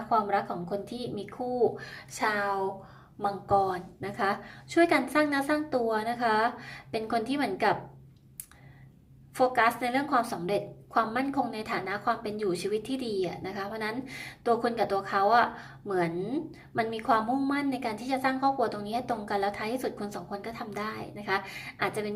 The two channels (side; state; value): both; identical; correlation 1.00